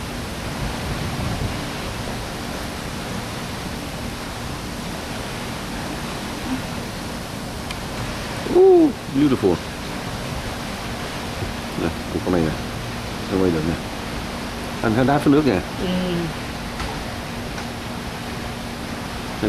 Beautiful. Nè, con này nè, nó quay được nè. Anh thấy đá phía nước nè.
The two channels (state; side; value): identical; both; correlation 1.00